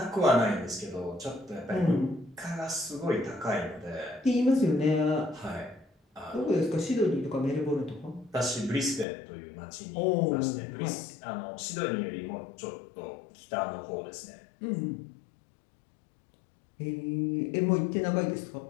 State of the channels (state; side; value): drops out; right; at 9.1 s